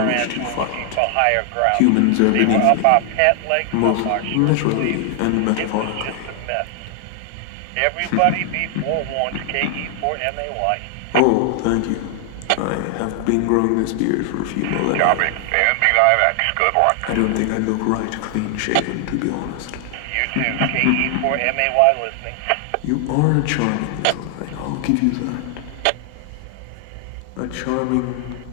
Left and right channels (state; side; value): different; both; correlation 0.00